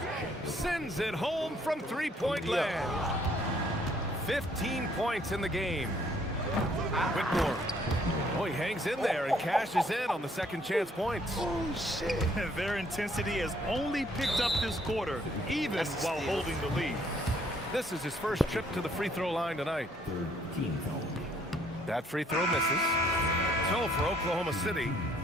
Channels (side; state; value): both; normal; correlation 0.65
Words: sends it home from three-point land. 15 points in the game. Whitmore. Oh, he hangs in there and cashes in on the second chance points. Oh, shit. Their intensity has only picked up this quarter, even while holding the lead. This is his first trip to the free throw line tonight. That free throw misses. So for Oklahoma City.